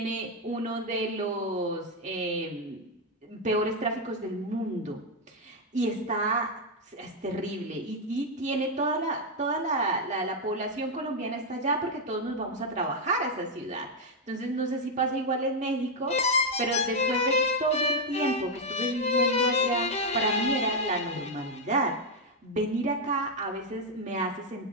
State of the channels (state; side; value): normal; both; correlation 0.02